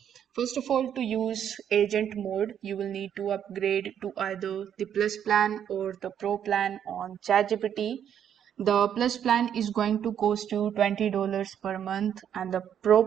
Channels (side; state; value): left; quieter; 9.2 dB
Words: First of all, to use agent mode, you will need to upgrade to either the Plus plan or the Pro plan on ChatGPT. The Plus plan is going to cost you $20 per month, and the Pro